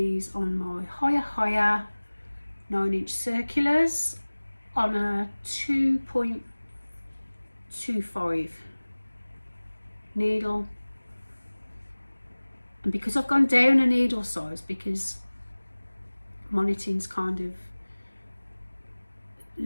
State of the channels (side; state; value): both; inverted; correlation -1.00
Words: on my higher 9-inch circulars on a 2.25 needle. And because I've gone down a needle size, because my knitting's kind of